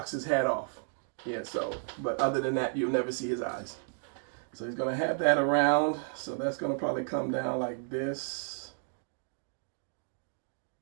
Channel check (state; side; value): silent; left; digital silence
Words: his hat off. Yeah, so, but other than that, you'll never see his eyes. So he's going to have that around. So that's going to probably come down like this.